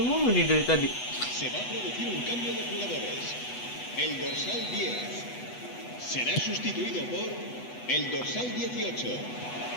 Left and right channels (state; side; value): late; right; 8.1 ms